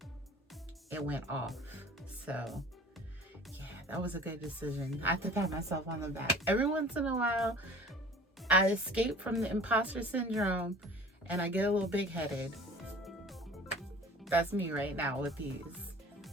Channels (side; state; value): both; normal; correlation 0.45